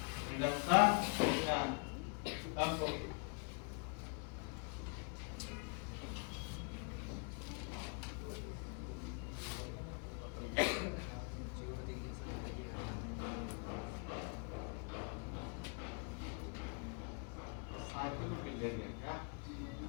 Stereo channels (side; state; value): right; quieter; 38.1 dB